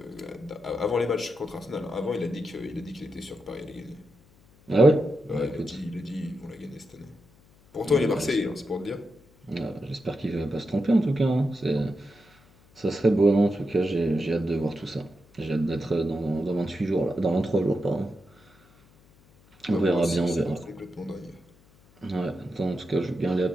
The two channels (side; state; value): left; noise; hum, 29 dB below the sound